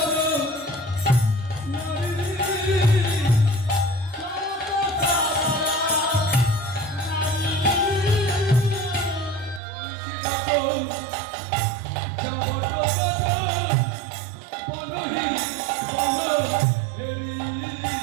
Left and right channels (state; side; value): drops out; left; at 9.6 s